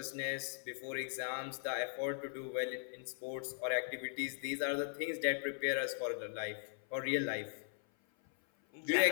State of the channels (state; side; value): silent; right; 52 dB below the other